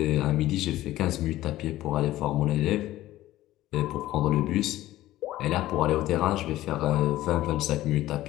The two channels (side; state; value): right; quieter; 15.3 dB